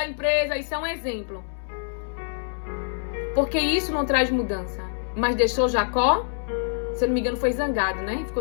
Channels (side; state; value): right; silent; 61 dB below the other